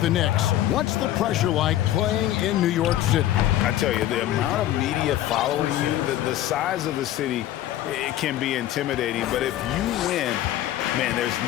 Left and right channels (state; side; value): quieter; right; 13.2 dB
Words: the Knicks, what's the pressure like playing in New York City? I tell you, the amount of media following you, the size of the city, it can be intimidating. But if you win, man, there's